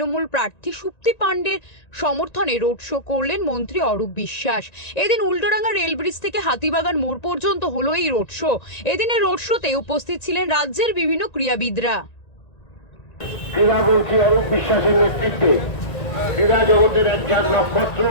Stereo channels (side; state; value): right; late; 1.9 ms